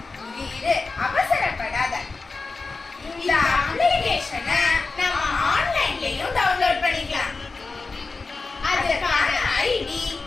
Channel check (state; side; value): quieter; right; 4.0 dB